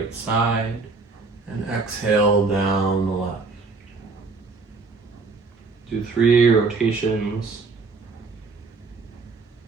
side, and exhale down the left. Do 3 rotations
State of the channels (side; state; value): left; quieter; 4.2 dB